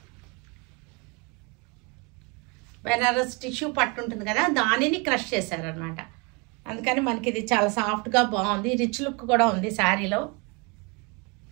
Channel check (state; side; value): quieter; left; 30.2 dB